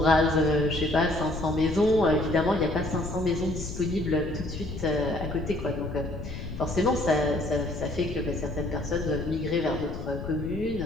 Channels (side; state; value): left; noise; rumble, 8 dB below the sound